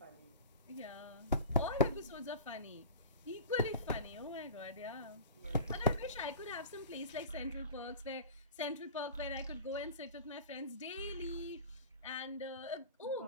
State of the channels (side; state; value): both; inverted; correlation -0.35